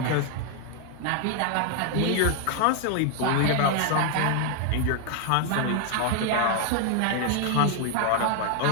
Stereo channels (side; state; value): both; different; correlation 0.00